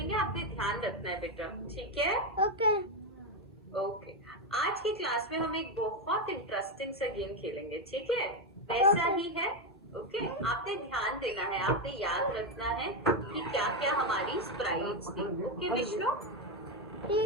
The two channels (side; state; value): both; normal; correlation 0.07